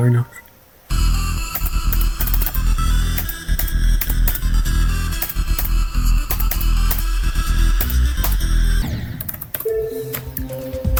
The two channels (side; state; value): both; identical; correlation 1.00